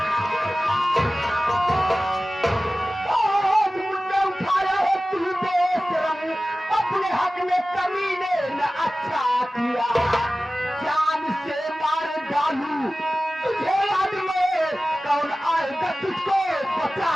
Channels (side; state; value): both; normal; correlation 0.96